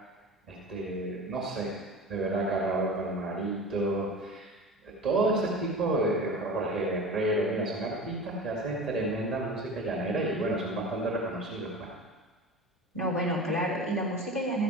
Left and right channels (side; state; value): both; normal; correlation 0.33